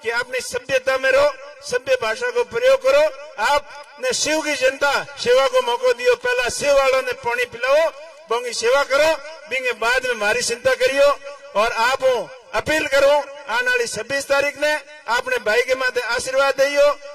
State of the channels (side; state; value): both; identical; correlation 1.00